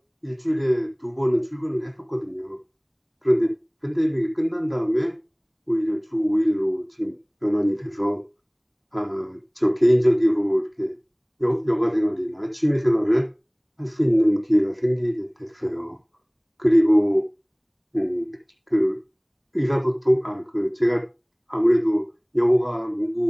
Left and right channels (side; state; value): both; identical; correlation 1.00